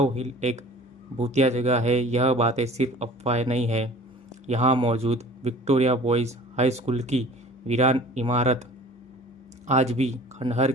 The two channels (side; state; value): both; normal; correlation 0.45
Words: हिल एक भूतिया जगह है। यह बातें सिर्फ अफवाहें नहीं है। यहाँ मौजूद विक्टोरिया बॉयज़ हाई स्कूल की वीरान इमारत आज भी खंडहर